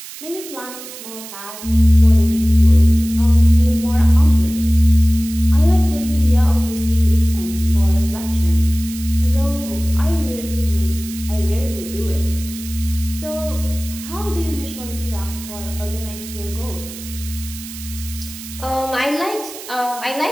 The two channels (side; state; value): right; noise; hiss, 13 dB below the sound